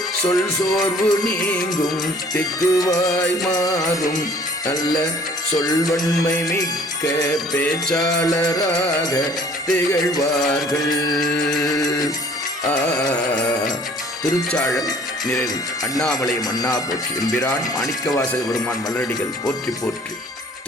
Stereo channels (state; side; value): normal; both; correlation 0.55